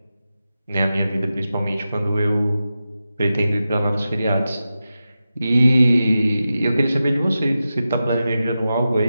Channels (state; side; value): inverted; both; correlation -0.92